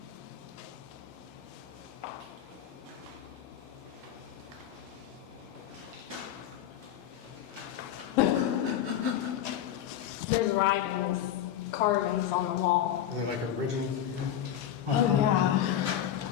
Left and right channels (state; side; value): quieter; right; 10.6 dB